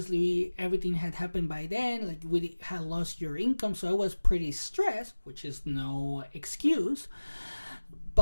everything had happened by then. Like, we had lost your income, so I was pretty stressed, which is no excuse.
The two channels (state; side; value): inverted; both; correlation -1.00